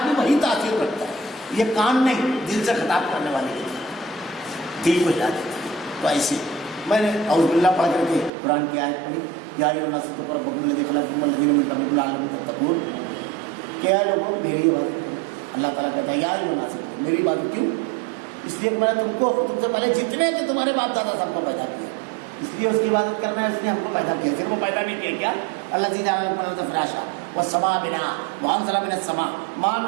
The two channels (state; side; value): drops out; left; at 8.3 s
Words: بھی وہی تاثیر رکھتا ہے، یہ کان نہیں دل سے خطاب کرنے والی دل کو ہلا دیتی ہے۔ تو ایسے میں نے اعوذ باللہ پڑھ کر کے قرآن کی آیت پڑھی، یا ایھا الناس اتقوا ربکم الذی خلقکم والذین من قبلکم لعلکم تتقون، کہ اے لوگوں میری عبادت کرو۔ اللہ تعالیٰ کہتا ہے یا ایھا الناس، میری عبادت کیوں؟ اس لیے کہ میں نے تم کو تم سے پہلے جتنے تھے تمہارے باپ دادا سب کو پیدا کیا، اس لیے اس کی عبادت کرنا ہے، اس نے ہم کو پیدا کیا، صرف وہ پیدا نہیں کیا کیا اللہ جی جعل لكم الارض فراشا والسماء بناء وانزل من السماء ماء